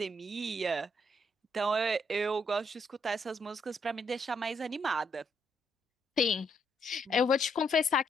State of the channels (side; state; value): both; normal; correlation 0.74